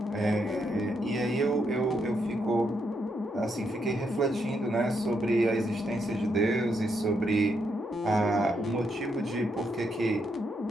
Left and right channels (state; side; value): normal; both; correlation 0.79